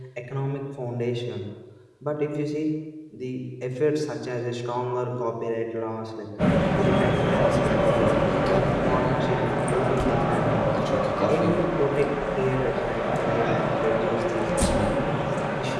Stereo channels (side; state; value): both; identical; correlation 1.00